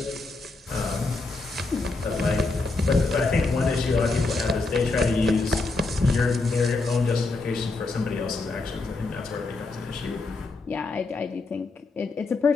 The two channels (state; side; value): quieter; right; 3.5 dB